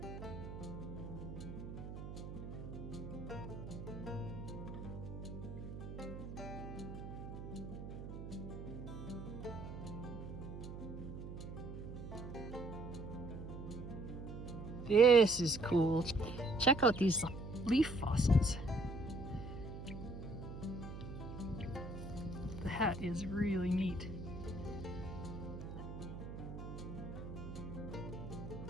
This is cool. Check out these leaf fossils. That is really neat.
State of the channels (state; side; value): noise; right; hum, 9 dB below the sound